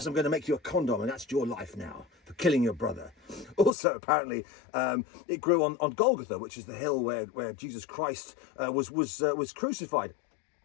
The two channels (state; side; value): drops out; right; at 3.7 s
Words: I'm going to make you a condom, and that's your life now for killing your brother. Also, apparently, it grew on Golgotha, which is the hill where Jesus Christ was crucified.